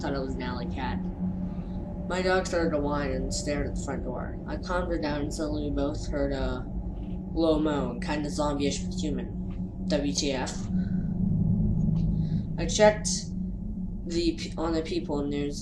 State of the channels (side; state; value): both; identical; correlation 1.00